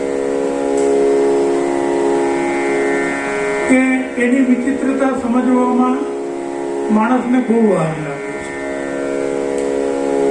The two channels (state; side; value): identical; both; correlation 1.00